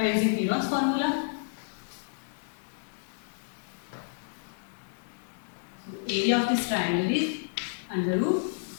using Heron's formula. Area of this triangle is under root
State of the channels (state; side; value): silent; right; digital silence